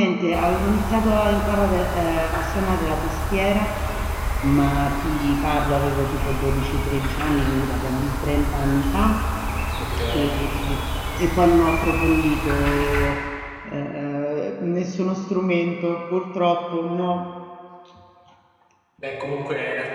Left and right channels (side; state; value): both; identical; correlation 1.00